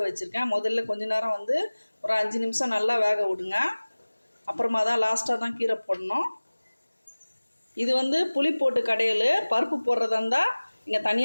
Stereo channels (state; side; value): inverted; both; correlation -1.00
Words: வச்சுருக்கேன். முதல்ல கொஞ்ச நேரம் ஒரு 5 நிமிஷம் நல்லா வேக விடுங்க. அப்புறமா தான் லாஸ்ட்டாக தான் கீரை போடணும். இது புளி போட்டு கடையல். பருப்பு போடுறதா இருந்தால் இங்கே